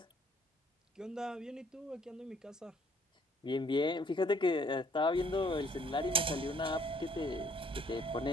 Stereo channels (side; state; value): both; normal; correlation 0.62